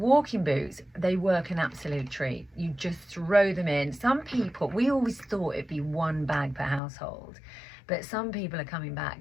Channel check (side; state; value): right; drops out; at 6.8 s